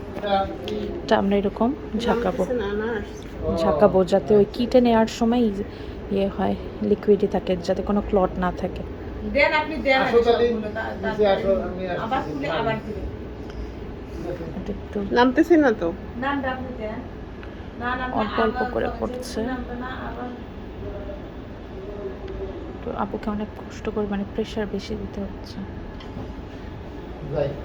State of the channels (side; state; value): both; identical; correlation 1.00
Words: এটা আমরা এরকম ঝাঁকাবো যাতে ওই কিটে নেওয়ার সময় ইয়ে হয়, লিকুইডই থাকে, যাতে কোনো ক্লট না থাকে। দেন, আপনি দেন আবার খুলে আবার দিবেন। এটা একটু নামতেছে না তো? নামটা আপনি দেন। না না, অল্প অল্প করে পড়ছে। নামটা না আবার। তো আপুকে অনেক কষ্ট করে, মানে প্রেশার বেশি দিতে হচ্ছে।